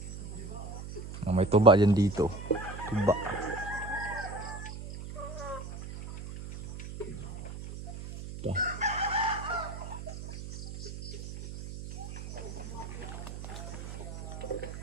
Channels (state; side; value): noise; right; hum, 10 dB below the sound